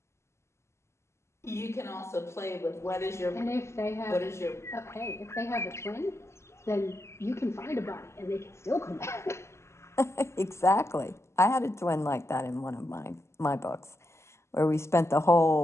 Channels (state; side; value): late; right; 0.13 ms